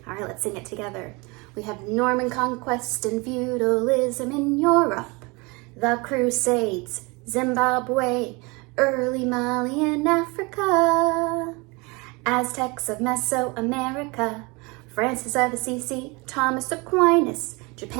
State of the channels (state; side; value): quieter; left; 27.0 dB